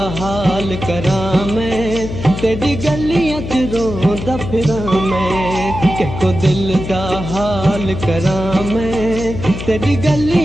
हाल करां मैं तेरी गलियां च रोंदा फिरां मैं को दिल दा हाल करां मैं तेरी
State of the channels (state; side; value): noise; left; hum, 7 dB below the sound